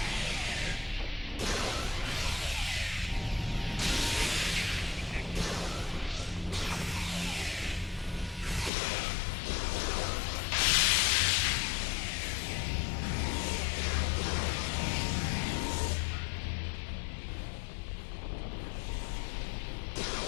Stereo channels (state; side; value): drops out; right; at 8.7 s